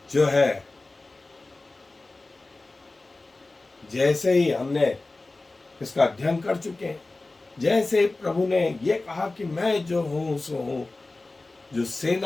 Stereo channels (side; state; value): right; quieter; 3.2 dB